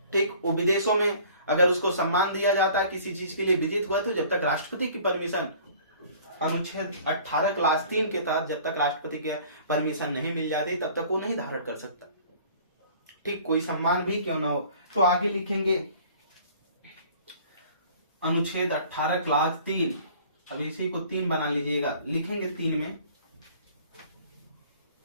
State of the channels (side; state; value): both; inverted; correlation -0.50